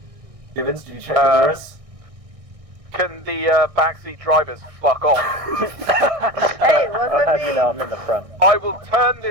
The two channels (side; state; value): left; late; 1.6 ms